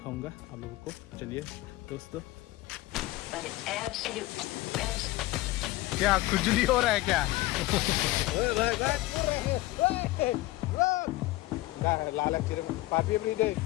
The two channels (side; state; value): right; quieter; 18.6 dB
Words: आप लोगों को। चलिए दोस्तों। क्या खुजली हो रहा है क्या?